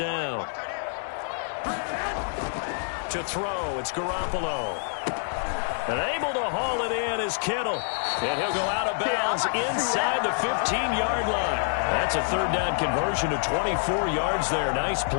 To throw, it's Garoppolo. And able to haul it in is Kittle. And he'll go out of bounds inside the 15-yard line. That's a 3rd down conversion to 24 yards there. Nice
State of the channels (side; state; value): right; silent; digital silence